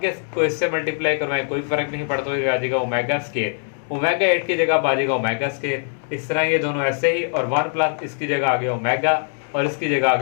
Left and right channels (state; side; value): silent; right; 62 dB below the other